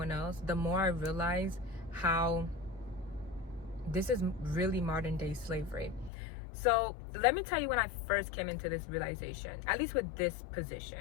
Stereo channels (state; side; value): drops out; right; at 6.1 s